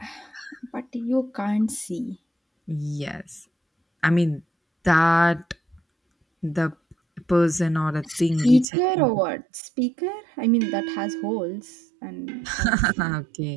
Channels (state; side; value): drops out; left; at 8.7 s